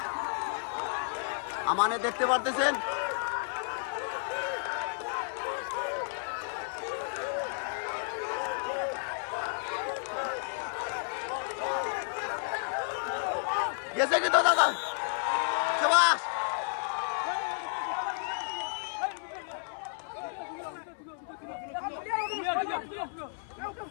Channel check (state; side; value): silent; right; 56 dB below the other